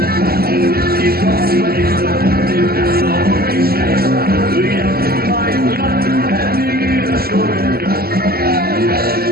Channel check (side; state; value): left; late; 0.45 ms